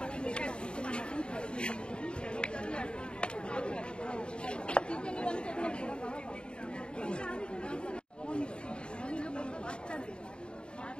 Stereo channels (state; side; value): late; right; 0.052 ms